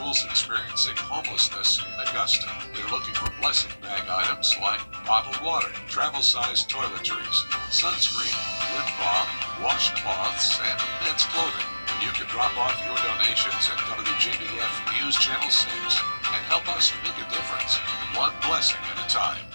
experiencing homelessness in Augusta. They're looking for blessing bag items like bottled water, travel-sized toiletries, sunscreen, lip balm, washcloths, and men's clothing. You can drop off your donations at WJBF News Channel 6 and help us make a difference, one blessing at a time.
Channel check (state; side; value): inverted; both; correlation -1.00